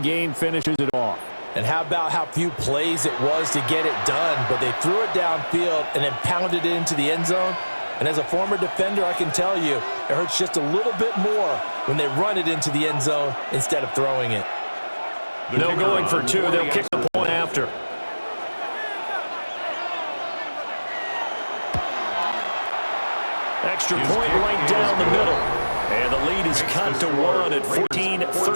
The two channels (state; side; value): inverted; both; correlation -1.00